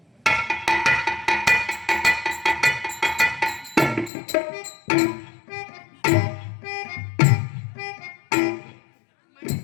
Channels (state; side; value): drops out; right; at 4.1 s